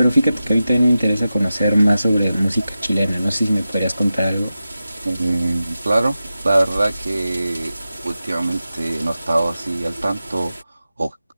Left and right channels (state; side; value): inverted; both; correlation -0.93